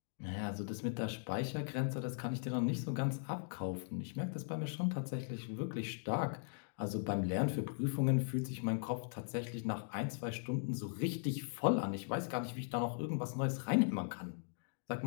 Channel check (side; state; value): right; silent; digital silence